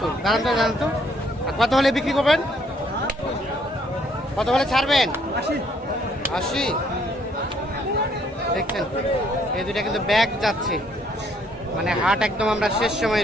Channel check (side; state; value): both; normal; correlation 0.66